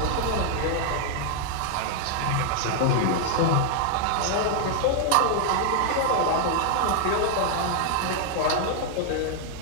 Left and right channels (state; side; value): different; both; correlation 0.00